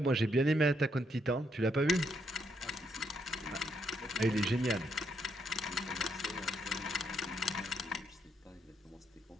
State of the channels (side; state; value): both; normal; correlation 0.76